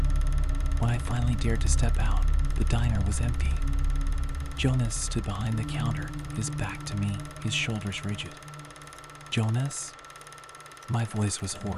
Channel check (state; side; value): identical; both; correlation 1.00